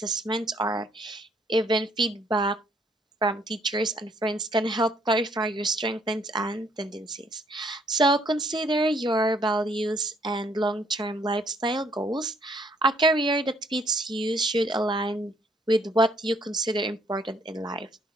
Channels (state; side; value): normal; both; correlation 0.65